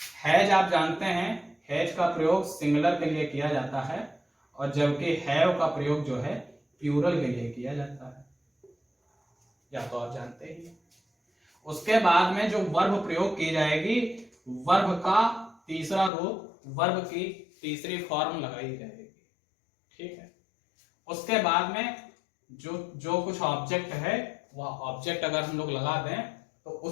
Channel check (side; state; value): right; drops out; at 16.1 s